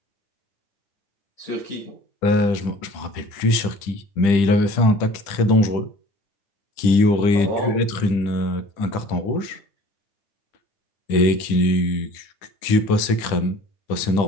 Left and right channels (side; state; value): right; late; 10 ms